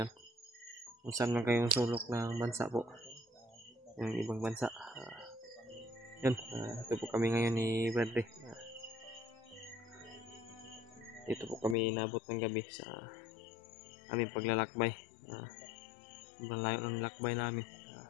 Kung saan man kayong sulok ng bansa po. Yung ibang bansa. Yun, ito po kami ngayon ni Bradley. Dito po kami inabot ng gabi sa aming paglalakbay. Sobrang layo ng lakbay namin.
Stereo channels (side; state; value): right; drops out; at 11.8 s